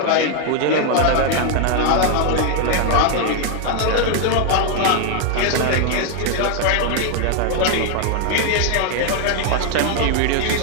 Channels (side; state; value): both; different; correlation 0.00